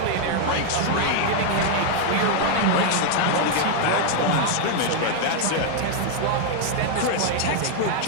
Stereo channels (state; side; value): different; both; correlation 0.00